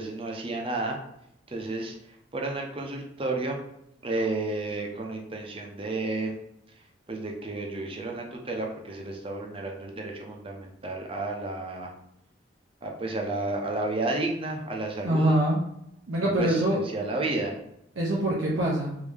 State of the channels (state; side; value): normal; both; correlation 0.49